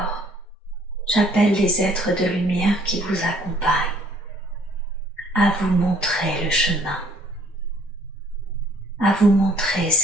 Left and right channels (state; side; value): normal; both; correlation 0.60